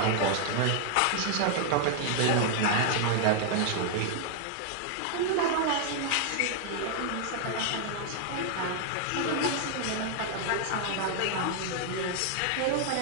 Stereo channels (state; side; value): different; both; correlation 0.00